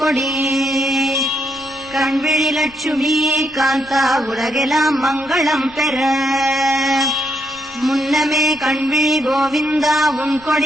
கொடி கண்விழி லட்சுமி காந்தா உலகெல்லாம் மங்களம் பெற. முன்னமே கண்விழி கோவிந்தா உன்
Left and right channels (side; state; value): left; noise; rumble, 25 dB below the sound